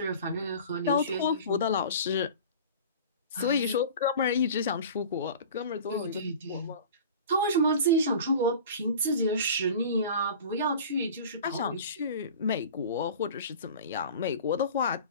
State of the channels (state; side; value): inverted; both; correlation -0.39